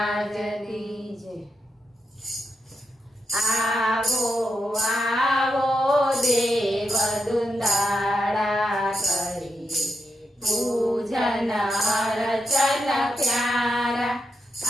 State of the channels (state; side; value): normal; both; correlation 0.86